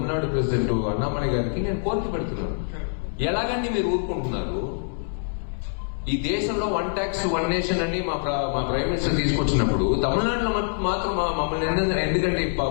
ప్రెసిడెంట్ అన్నామలై గారికి నేను కోరిక పెడుతున్నాను. ఎలాగండి మీరు ఊరుకుంటున్నారు? ఈ దేశంలో 1 ట్యాక్స్ 1 నేషన్ అని మా ప్రైమ్ మినిస్టర్ తీసుకొచ్చినప్పుడు తమిళనాడులో మాత్రం మమ్మల్ని ఎందుకంటే 18%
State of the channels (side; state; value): right; silent; digital silence